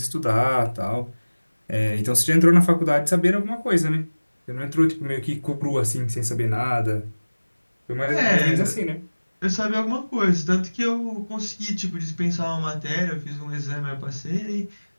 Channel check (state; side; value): inverted; both; correlation -1.00